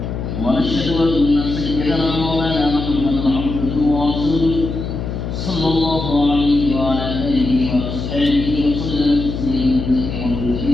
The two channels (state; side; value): noise; left; hum, 5 dB below the sound